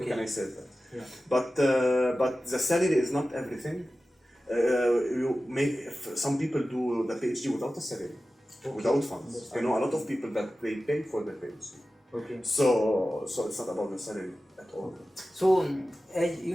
Can I say that? Yeah. But the salary is not everything. Some people do the PhD without a salary, without funds. I know a lot of people that they pay for their PhD. Okay. So it's not about the salary at all. So, as you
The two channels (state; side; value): normal; both; correlation 0.95